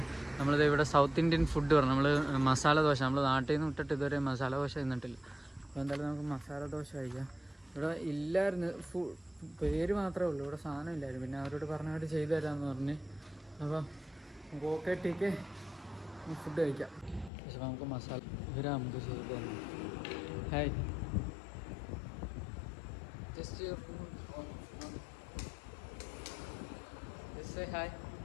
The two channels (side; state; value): right; drops out; at 17.3 s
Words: നമ്മളിത് ഇവിടെ സൗത്ത് ഇന്ത്യൻ ഫുഡ് പറഞ്ഞു. നമ്മൾ മസാല ദോശ, നമ്മൾ നാട്ടിൽ നിന്ന് വിട്ടിട്ട് ഇതുവരെ മസാല ദോശ തിന്നിട്ടില്ല. അപ്പോൾ എന്തായാലും നമുക്ക് മസാല ദോശ കഴിക്കാം. ഇവിടെ ഇല്ലായിരുന്നു, പേര് മാത്രമേ ഉള്ളൂ. ഇവിടെ സാധനം ഇല്ലായിരുന്നു. പിന്നെ അവരോട് പറഞ്ഞായിട്ട് ചെയ്തു തരാമെന്ന് പറഞ്ഞ്. അപ്പം നമുക്ക് ഓക്കെ ടീക്ക് ഫുഡ് കഴിക്കാം. പക്ഷെ നമുക്ക് മസാല ഇവരാ നമുക്ക് ചെയ്തു തന്നു. Hi, just say hi.